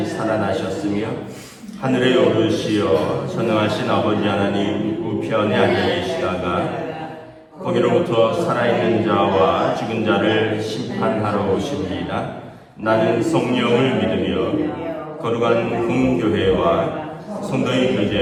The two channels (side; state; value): both; identical; correlation 1.00